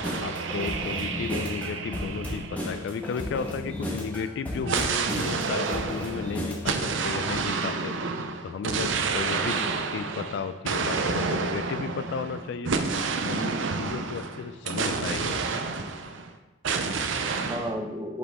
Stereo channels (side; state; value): both; normal; correlation 0.20